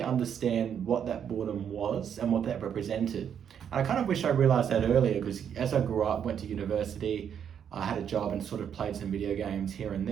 understand what that boredom was and what that represented. And I kind of wish I realized that earlier, because as I grew up, went to university, I had a job and sort of played some video games here and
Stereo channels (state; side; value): quieter; left; 8.4 dB